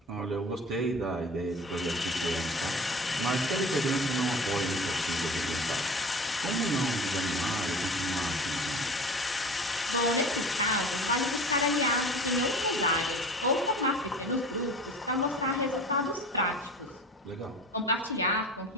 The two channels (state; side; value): normal; both; correlation 0.38